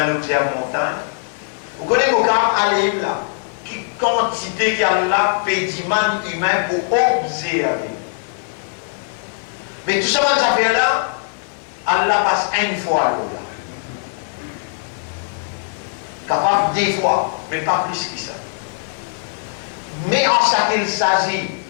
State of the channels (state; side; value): silent; right; 66 dB below the other